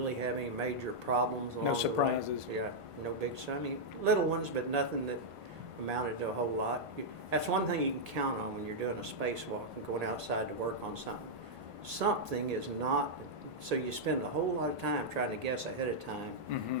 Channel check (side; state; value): left; late; 1.6 ms